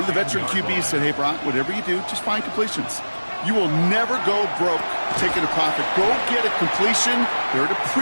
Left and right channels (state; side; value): inverted; both; correlation -1.00